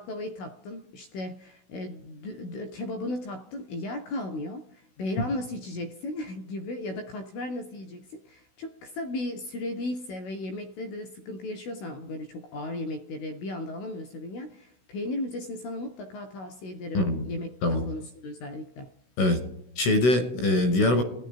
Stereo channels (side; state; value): right; late; 16 ms